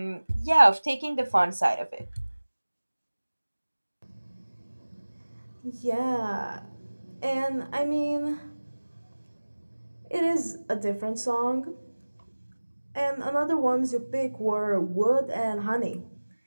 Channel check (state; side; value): inverted; both; correlation -1.00